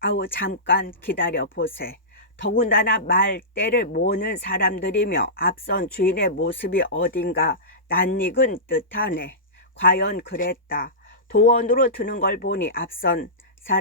아우 잠깐 기다려 보세. 더군다나 말대를 모으는 사람들이며 앞선 주인의 모습이 어딘가 낯익은 듯하네. 과연 그랬다. 도원으로 드는 걸 보니 앞선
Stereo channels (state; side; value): normal; both; correlation -0.18